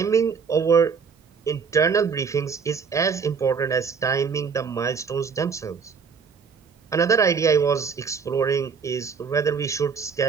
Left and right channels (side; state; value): left; quieter; 5.8 dB